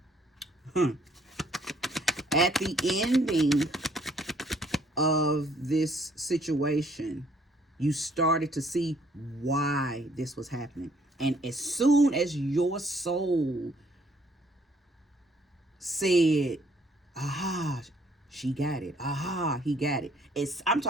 At the ending of this situation, you started to see why this was happening. And as soon as your soul said, aha, she got it, aha, he got it, I'm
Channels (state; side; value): normal; both; correlation 0.64